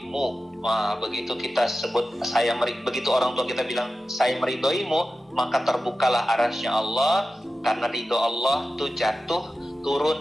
Wah, begitu kita sebut begitu orang tua kita bilang saya meridhoimu, maka terbukalah arasy Allah, karena ridho Allah itu jatuh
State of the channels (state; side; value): normal; both; correlation 0.93